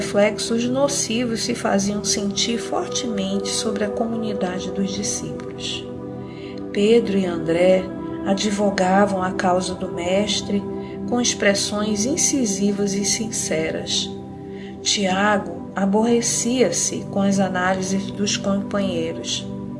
nocivos se faziam sentir fortemente sobre a comunidade dos discípulos. Pedro e André advogavam a causa do Mestre com expressões incisivas e sinceras. Tiago aborrecia-se com as análises dos companheiros.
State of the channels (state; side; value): identical; both; correlation 1.00